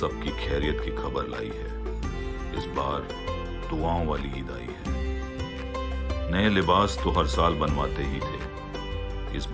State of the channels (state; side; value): identical; both; correlation 1.00